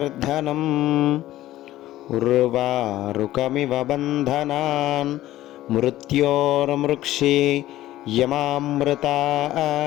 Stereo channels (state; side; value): quieter; right; 14.9 dB